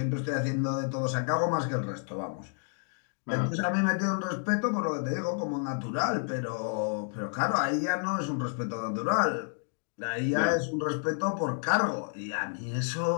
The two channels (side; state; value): right; silent; 58 dB below the other